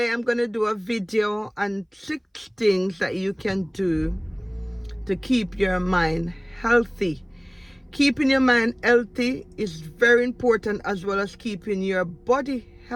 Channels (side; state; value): both; identical; correlation 1.00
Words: I'm going to do a video on 6 things that you can do to keep your mind healthy. Keeping your mind healthy is very important, as well as keeping your body